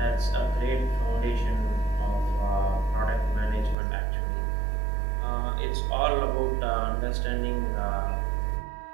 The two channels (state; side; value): drops out; left; at 3.8 s